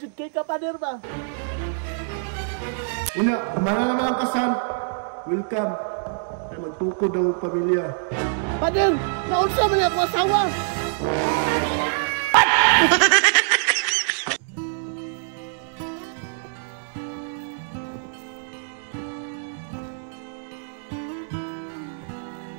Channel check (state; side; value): silent; left; digital silence